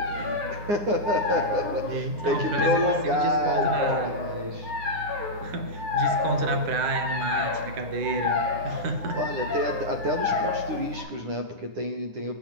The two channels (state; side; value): late; left; 9.8 ms